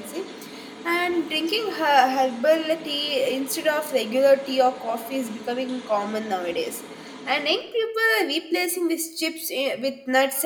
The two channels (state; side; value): identical; both; correlation 1.00